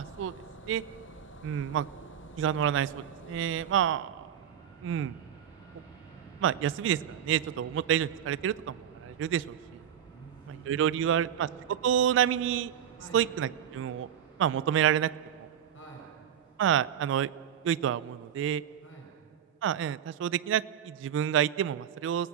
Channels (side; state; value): left; quieter; 9.6 dB